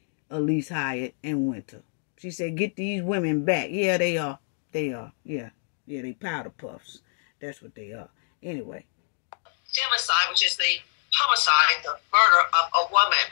Elise Hyatt, and Winter. She said, get these women back. Yeah, they are. They are. Yeah, they powder puffs. That's what they are. Anyway. Femicide, which is the homicide, the murder of a woman.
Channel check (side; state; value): right; silent; digital silence